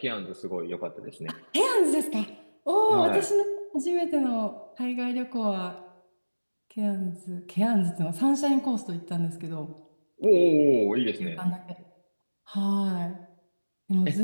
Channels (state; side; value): inverted; both; correlation -1.00